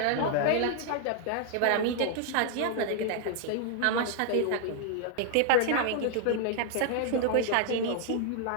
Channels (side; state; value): both; different; correlation 0.00